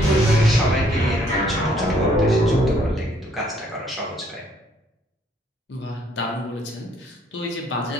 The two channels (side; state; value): both; normal; correlation 0.65